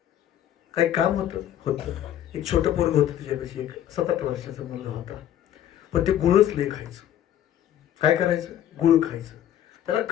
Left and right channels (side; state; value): right; quieter; 11.2 dB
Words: काही काम होतं. एक छोटं पोरग होतं तिच्यापाशी, एक 7-8 वर्षाचा मुलगा होता. पण ते गुळच लय खायचं. काय करायचं, गुळ खायचं. त्याला